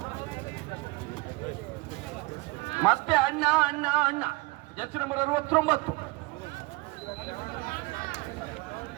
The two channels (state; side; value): quieter; left; 23.9 dB